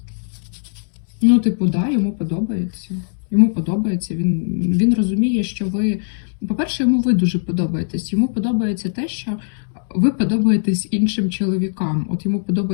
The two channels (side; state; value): right; silent; digital silence